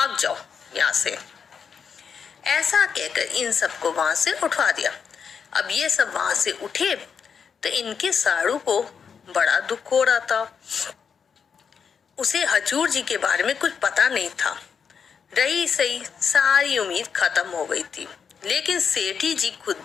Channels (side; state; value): right; quieter; 6.5 dB